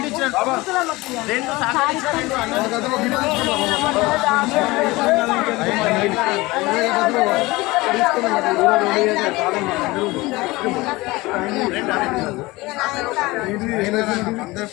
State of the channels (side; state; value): right; quieter; 21.4 dB